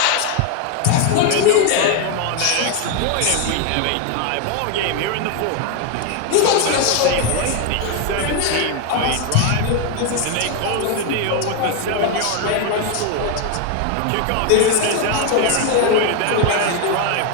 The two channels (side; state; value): both; different; correlation 0.01